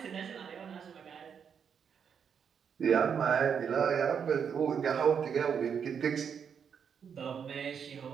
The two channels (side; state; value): left; quieter; 7.2 dB